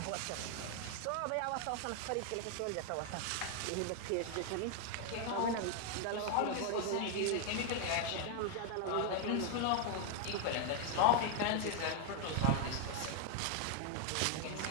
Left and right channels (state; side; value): different; both; correlation 0.00